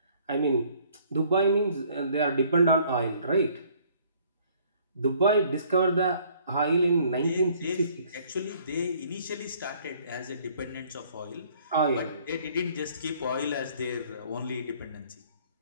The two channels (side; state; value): both; inverted; correlation -0.59